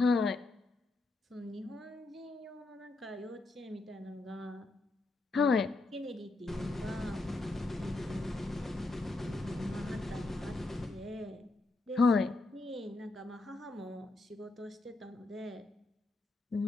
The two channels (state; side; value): quieter; right; 3.1 dB